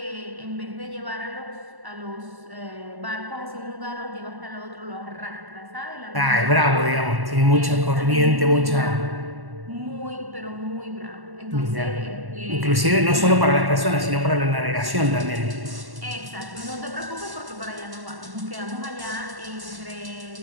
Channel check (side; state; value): left; late; 1.1 ms